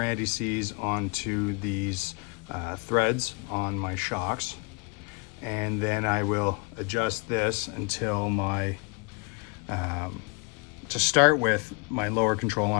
anti-seize onto these threads on my shocks, and then I will adjust this until my to start with, my lower control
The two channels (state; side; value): quieter; right; 31.2 dB